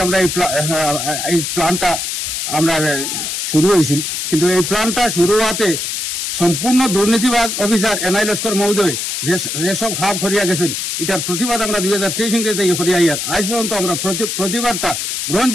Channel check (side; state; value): left; noise; hiss, 3 dB below the sound